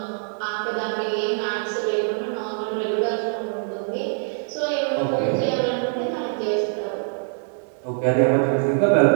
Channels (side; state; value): left; silent; 59 dB below the other